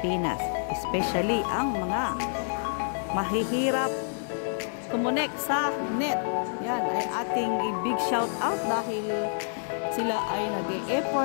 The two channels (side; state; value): right; silent; 59 dB below the other